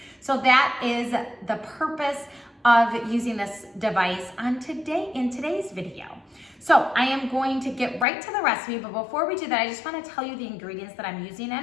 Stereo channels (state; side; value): drops out; right; at 8.1 s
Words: So that is the purpose of using this device in today's video. So I am going to get right to the recipe, but before we do that, I just want to tell you the ingredients that I'm using